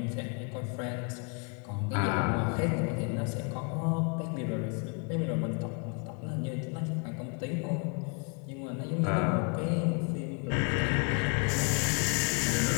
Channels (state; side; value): quieter; right; 37.1 dB